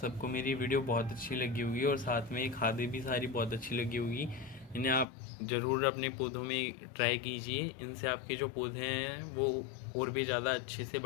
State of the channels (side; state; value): right; drops out; at 5.1 s